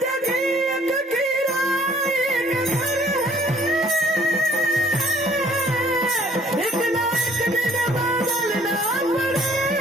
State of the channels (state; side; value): normal; both; correlation 0.59